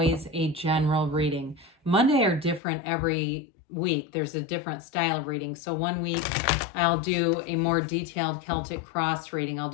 a general reading. Monday are different every week. There's a different style of reading. So one week I'll do a more detailed Celtic cross reading. I'll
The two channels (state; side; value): drops out; right; at 2.6 s